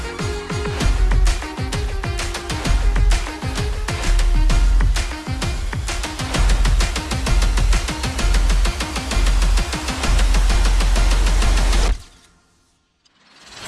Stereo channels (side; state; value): both; identical; correlation 1.00